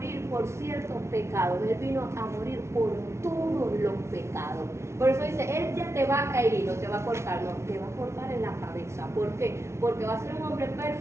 por ciertos pecados, Él vino a morir por todos los pecados. Por eso dice, Él ya te va a herir, no te va a cortar, no, te va a cortar en la cabeza. ¿Por qué? Porque va a ser un hombre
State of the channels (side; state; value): left; late; 0.13 ms